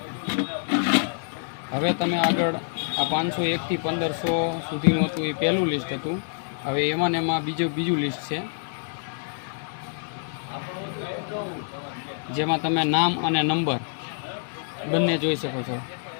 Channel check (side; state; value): right; silent; digital silence